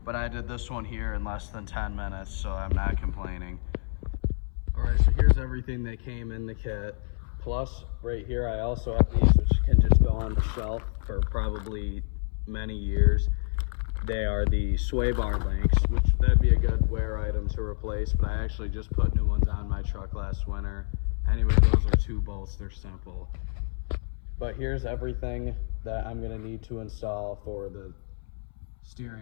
but I did this one here in less than 10 minutes, so I'm not complaining. All right, so here's everything that came in the kit. Plus, right here, I also have these, which can just go on the shelf for probably many years. They are the sway bar links, which that'd be a good wear item to replace, but I actually just put new ones on my truck last winter. Anyway, those are 2 bolts, they're simple. But here's everything that I'm gonna need to install for the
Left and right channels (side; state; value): right; silent; 59 dB below the other